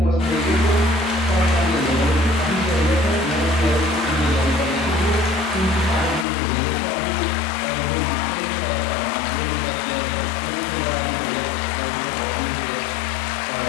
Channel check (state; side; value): drops out; right; at 6.2 s